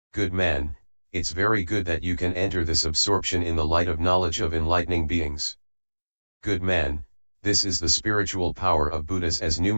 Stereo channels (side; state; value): both; inverted; correlation -1.00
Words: Good man, it's very good that you can enter this absorption in the light of knowledge of enlightening beings. Good man, this is the spiritual power of Buddhas as